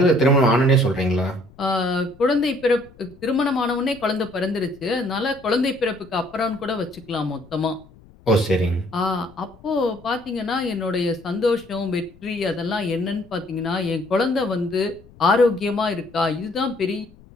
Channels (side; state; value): left; noise; rumble, 25 dB below the sound